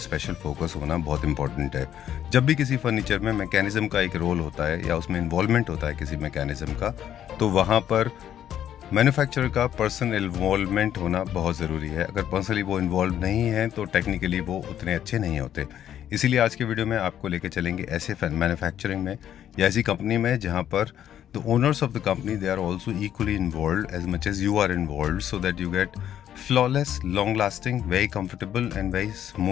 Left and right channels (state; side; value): quieter; right; 10.5 dB